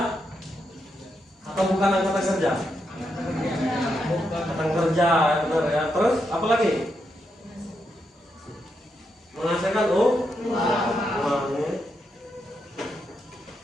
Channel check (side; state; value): both; normal; correlation 0.82